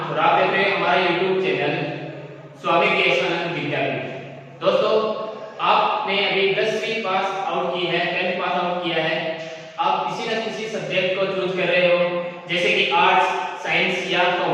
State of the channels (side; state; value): both; identical; correlation 1.00